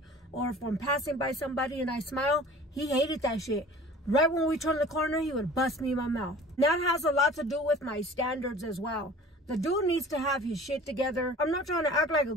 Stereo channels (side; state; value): both; normal; correlation 0.45